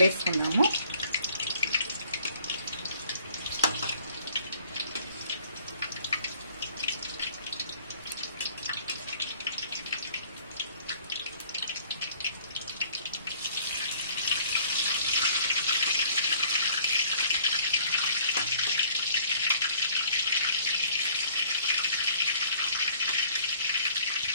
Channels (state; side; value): inverted; both; correlation -0.56